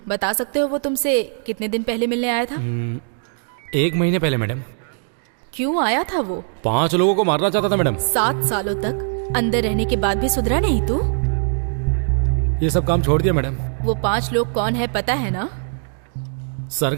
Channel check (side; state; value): left; silent; digital silence